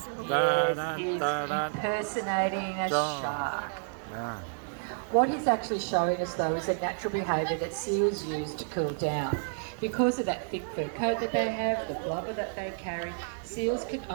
Yes, he's impersonating a shark. What he's actually showing us though is a natural behaviour that seals use to cool down. Because of that thick fur coat that they have, the blubber that they carry, seals can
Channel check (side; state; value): left; silent; digital silence